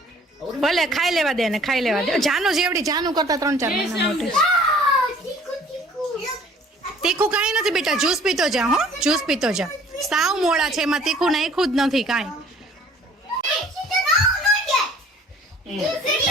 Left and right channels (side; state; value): both; normal; correlation 0.53